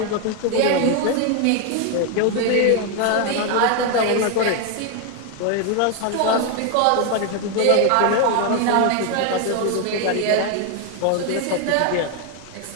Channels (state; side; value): different; both; correlation 0.01